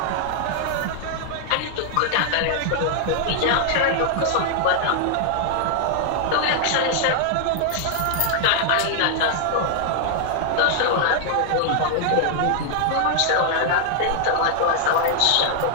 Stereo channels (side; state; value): both; different; correlation 0.00